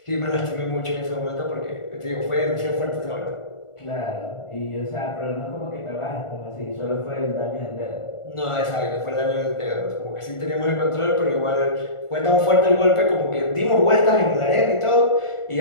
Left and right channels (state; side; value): late; right; 1.4 ms